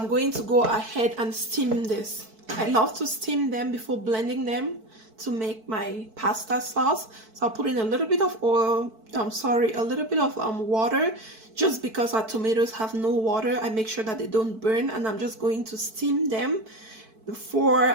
going to go ahead and steam this. I love to steam them before blending them to make my pasta sauce. So I'll put in a little bit of oil, a little bit of water, just because our tomatoes have no water. I make sure that they don't burn, and I'm just going to steam them before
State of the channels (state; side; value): late; left; 4.5 ms